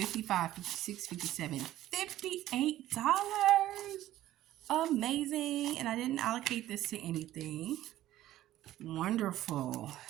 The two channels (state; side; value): quieter; left; 14.1 dB